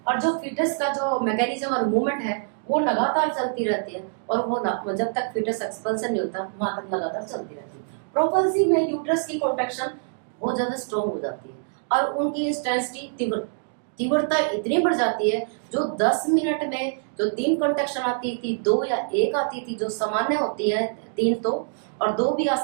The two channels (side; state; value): left; silent; digital silence